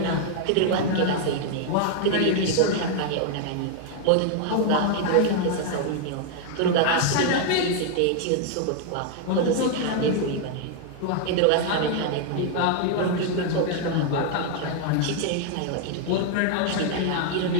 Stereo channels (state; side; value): different; both; correlation 0.00